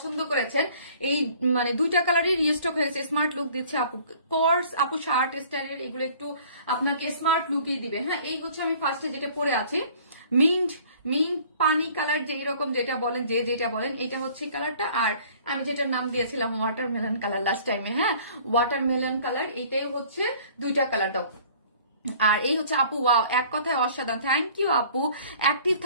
করেছেন। এই মানে দুইটা কালারই রিস্টক হয়েছে, স্মার্ট লুক দিচ্ছে আপু। কোর্স আপু শার্ট স্টাইলের এগুলো একটু আপনাকে স্মার্ট লুকই দিবে। হ্যাঁ, এই হচ্ছে আমি ফার্স্টে যেটা পরে আছি, মিন্ট মিন্ট পানি কালার, যেই রকম যেটা বলেন, যেটা বলেন, এটা হচ্ছে কালারটা। আর আমি যেটার নাম দিয়েছিলাম ওয়াটারমেলন কালার লাস্ট টাইমে, হ্যাঁ ওয়াটারমেলন কালার, এটাই হচ্ছে দুইটা কালার দাও। আর এই হচ্ছে আপু, ওয়াও, এক কথায় অসাধারণ, থ্যাংক ইউ আপু। অ্যাক্টিভ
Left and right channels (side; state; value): both; inverted; correlation -0.52